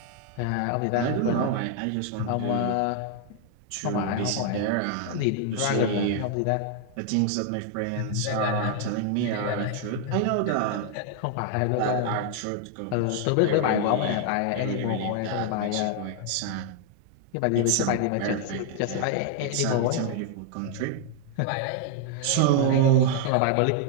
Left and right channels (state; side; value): different; both; correlation 0.00